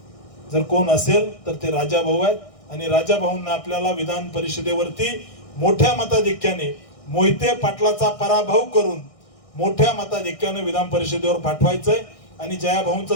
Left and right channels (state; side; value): late; right; 1.6 ms